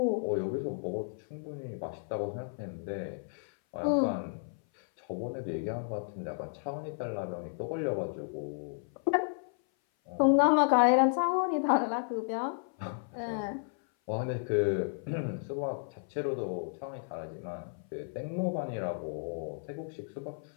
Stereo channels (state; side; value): silent; right; 56 dB below the other